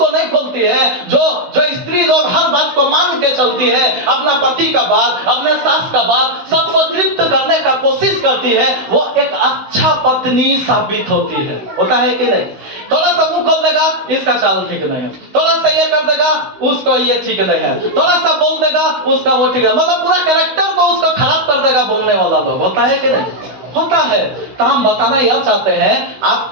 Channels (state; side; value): late; left; 16 ms